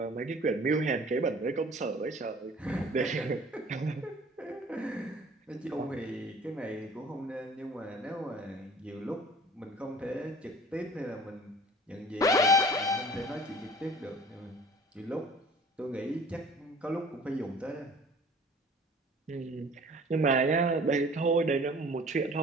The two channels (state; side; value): normal; both; correlation 0.48